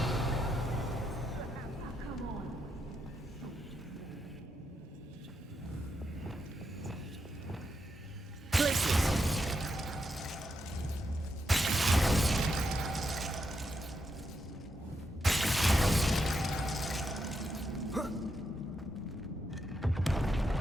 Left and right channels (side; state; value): both; normal; correlation 0.82